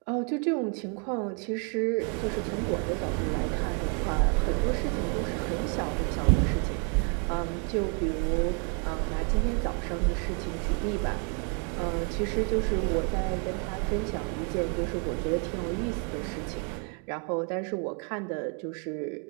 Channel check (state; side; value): quieter; left; 38.9 dB